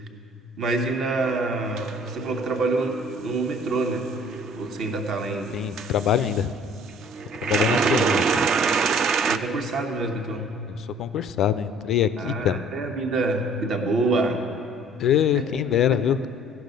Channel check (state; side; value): normal; both; correlation 0.53